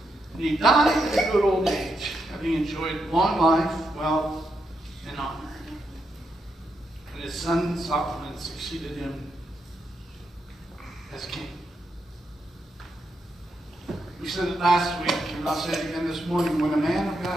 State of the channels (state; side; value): normal; both; correlation 0.83